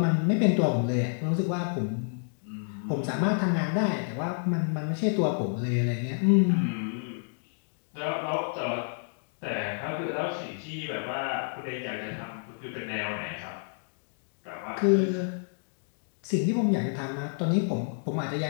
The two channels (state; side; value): silent; right; digital silence